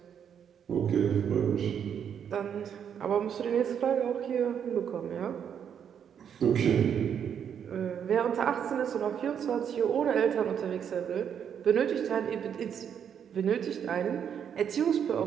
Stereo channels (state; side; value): quieter; left; 8.2 dB